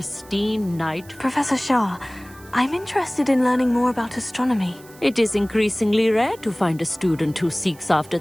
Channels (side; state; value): right; noise; hiss, 23 dB below the sound